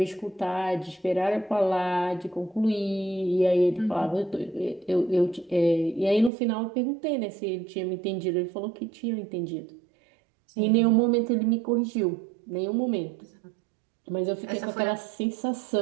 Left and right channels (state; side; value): drops out; left; at 6.3 s